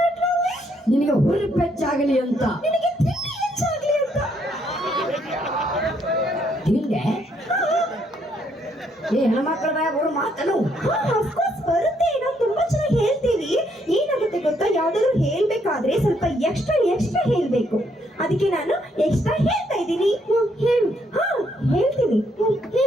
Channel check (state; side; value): normal; both; correlation 0.72